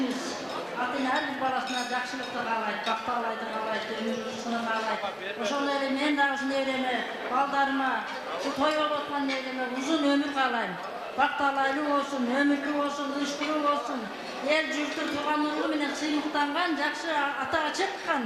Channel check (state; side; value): identical; both; correlation 1.00